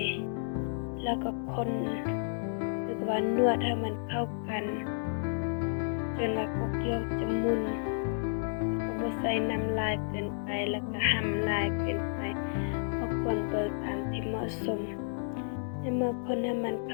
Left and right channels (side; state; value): right; silent; 57 dB below the other